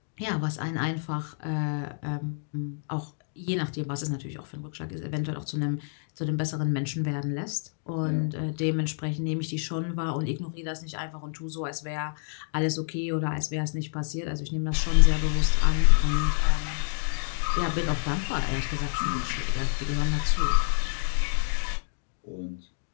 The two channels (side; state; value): right; silent; digital silence